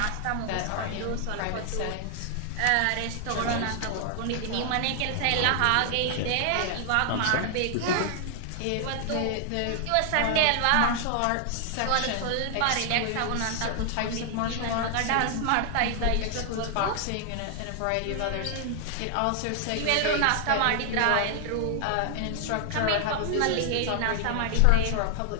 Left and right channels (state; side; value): different; both; correlation 0.00